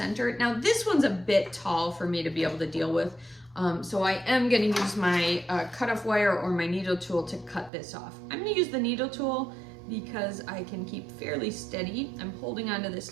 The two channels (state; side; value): drops out; left; at 7.7 s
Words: Now this one's a bit tall for me to be able to deal with, so I am going to use my cutoff wire or my needle tool to cut this off. I'm going to use the needle tool because I can keep fairly steady. I'm holding onto this